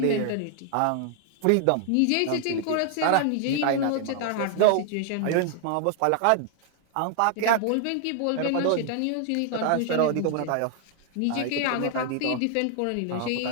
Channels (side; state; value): both; different; correlation 0.00